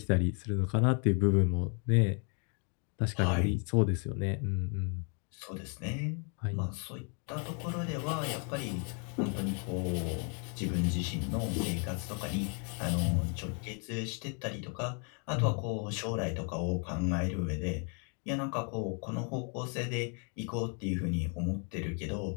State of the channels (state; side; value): quieter; right; 39.3 dB